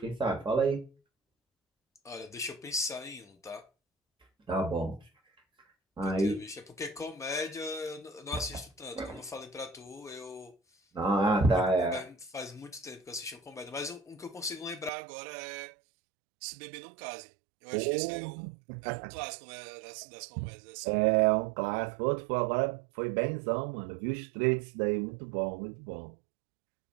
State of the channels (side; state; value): left; drops out; at 14.9 s